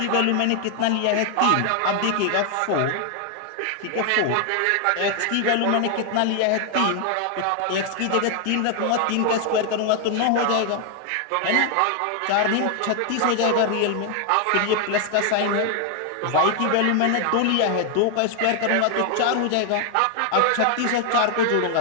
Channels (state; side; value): different; both; correlation 0.00